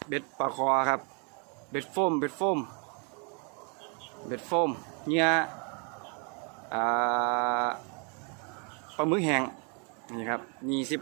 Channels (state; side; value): quieter; left; 37.1 dB